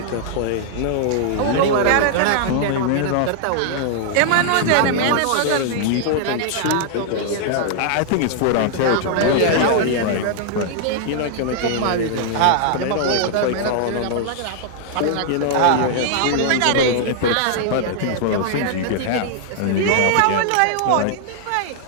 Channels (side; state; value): both; different; correlation -0.01